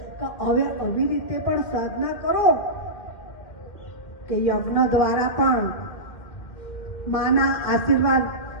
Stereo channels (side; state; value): right; late; 2.2 ms